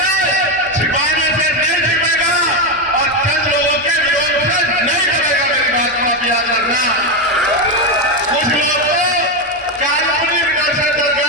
छिपाने से नहीं छिपेगा और चंद लोगों के विरोध से नहीं करेगा। मेरी बात को आप याद रखना। कुछ लोग तो काल्पनिक डर से डर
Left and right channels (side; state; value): both; normal; correlation 0.09